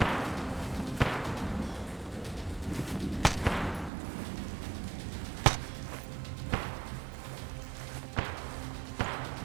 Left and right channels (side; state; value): left; drops out; at 3.9 s